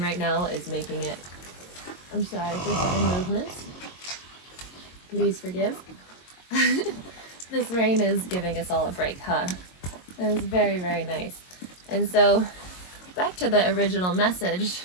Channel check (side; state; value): right; late; 22 ms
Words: now is making it... I'm sorry for sudden movements. Please forgive. This rain is giving us all a break, huh? It's very, very nice. And so, back to the original message